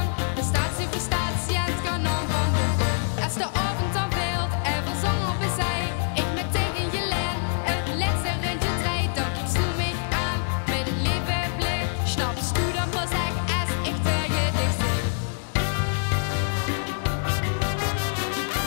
De statie voor statie, het kan om van Bochum. Als de avond al wild en verzong op een zij. Ik met tegen je lijn, het laatste rondje draait. Dan ik sloeg mich aan met een lieve blik. Schnappst du dan voor zeg als ik tegen dich zie.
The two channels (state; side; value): silent; right; 61 dB below the other